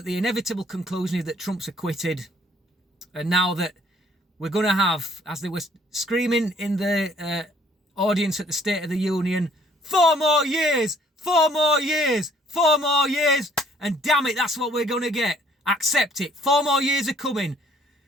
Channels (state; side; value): normal; both; correlation 0.61